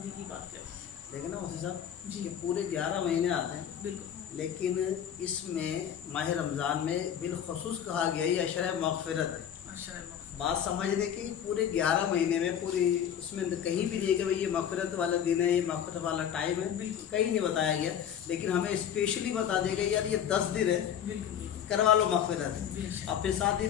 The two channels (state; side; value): quieter; right; 9.2 dB